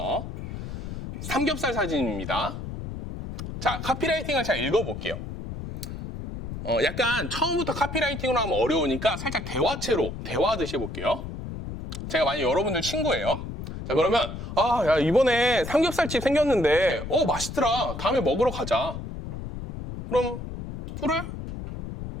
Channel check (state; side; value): noise; left; rumble, 8 dB below the sound